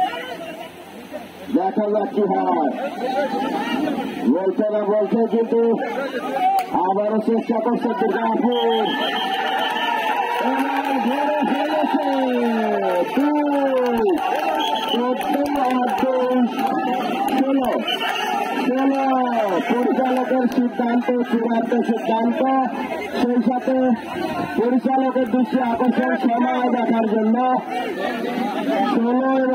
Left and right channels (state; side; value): identical; both; correlation 1.00